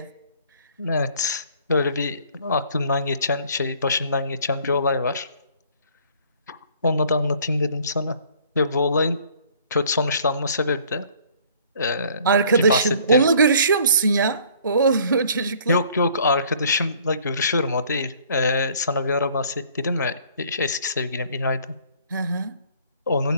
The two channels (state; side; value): inverted; both; correlation -0.56